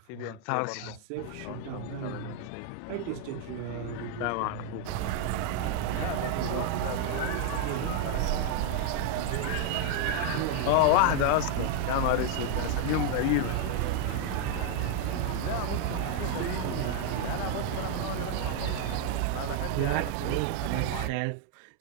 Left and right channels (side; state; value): both; different; correlation 0.00